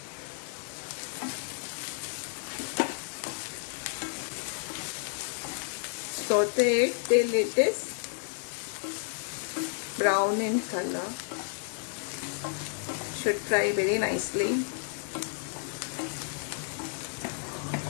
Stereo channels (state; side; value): silent; right; 56 dB below the other